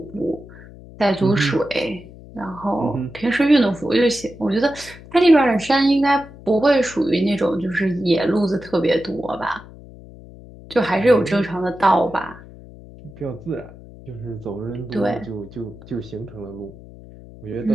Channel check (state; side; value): noise; left; hum, 19 dB below the sound